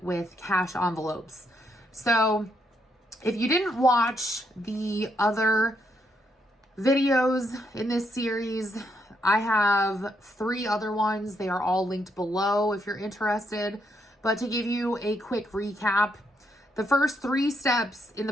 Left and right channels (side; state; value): both; normal; correlation 0.76